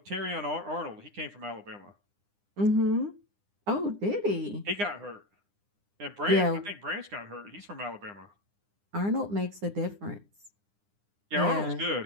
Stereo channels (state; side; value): late; left; 9.8 ms